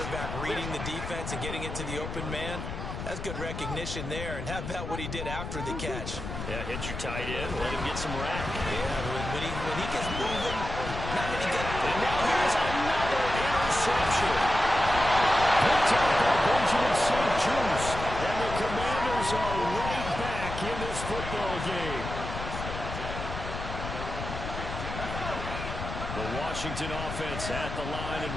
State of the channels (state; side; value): noise; left; rumble, 7 dB below the sound